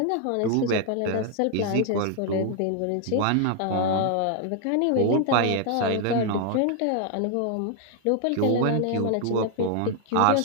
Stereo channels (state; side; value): different; both; correlation 0.00